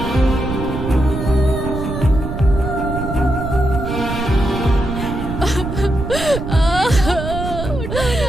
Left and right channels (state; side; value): noise; right; rumble, 5 dB below the sound